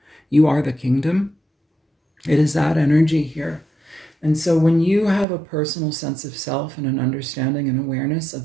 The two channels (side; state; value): left; drops out; at 5.2 s